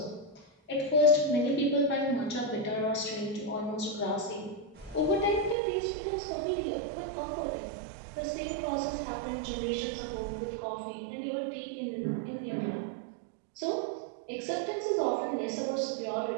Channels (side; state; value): left; drops out; at 5.6 s